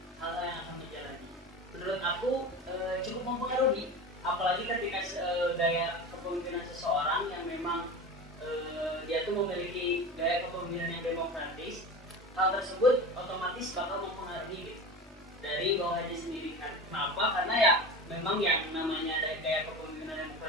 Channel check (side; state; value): both; normal; correlation 0.29